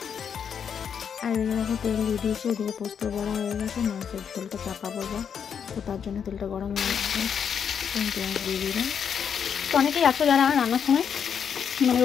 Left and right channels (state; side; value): quieter; right; 7.5 dB